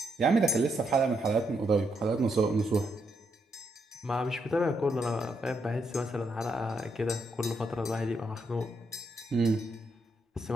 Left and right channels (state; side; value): normal; both; correlation 0.78